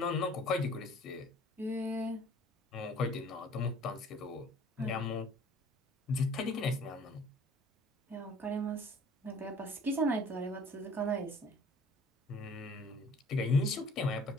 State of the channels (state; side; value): normal; both; correlation 0.53